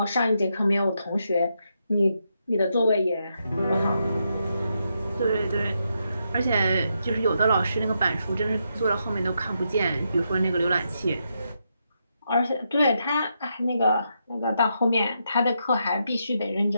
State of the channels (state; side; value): inverted; both; correlation -0.82